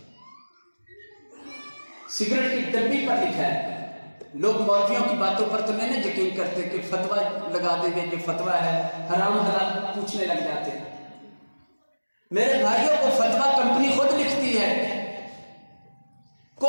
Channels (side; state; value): both; inverted; correlation -1.00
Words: سگریٹ کی ڈبی پر لکھا ہے لوگ مولویوں کی باتوں پر تو نہیں یقین کرتے کہ فتویٰ لگا دیں گے، یہ فتویٰ ہے، حرام حلال پوچھنے لگ جاتے ہیں۔ میرے بھائیوں کو فتویٰ کمپنی خود لکھتی ہے،